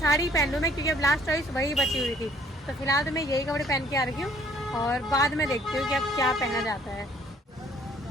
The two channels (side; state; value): both; normal; correlation 0.60